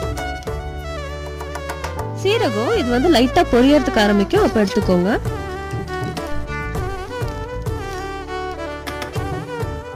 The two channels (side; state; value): both; identical; correlation 1.00